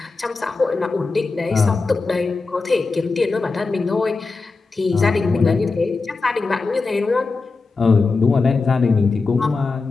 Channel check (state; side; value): quieter; right; 4.0 dB